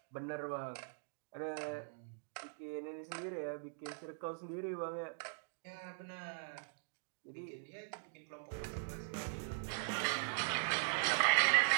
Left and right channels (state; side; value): silent; left; digital silence